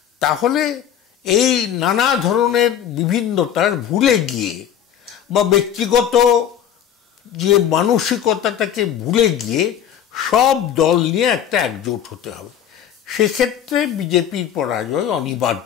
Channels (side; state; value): right; quieter; 9.6 dB